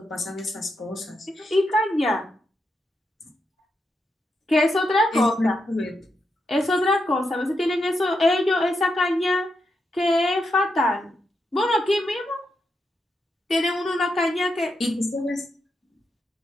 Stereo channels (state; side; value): normal; both; correlation 0.84